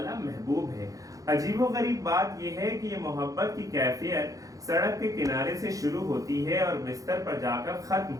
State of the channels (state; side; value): late; left; 0.17 ms